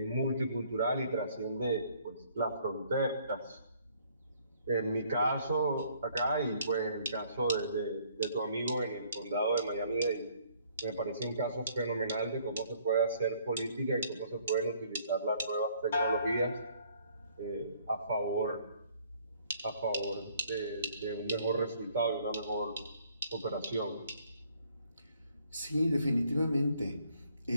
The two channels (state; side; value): inverted; both; correlation -0.62